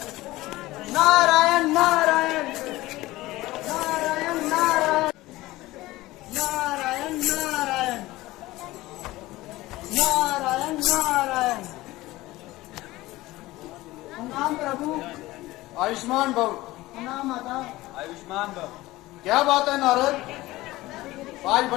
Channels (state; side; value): quieter; right; 18.3 dB